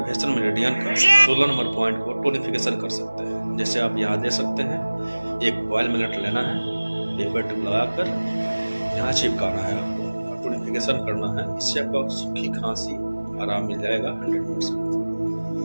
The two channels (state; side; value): inverted; both; correlation -1.00